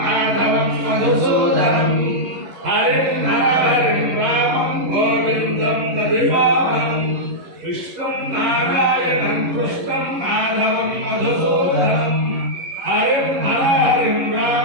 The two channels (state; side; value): late; left; 11 ms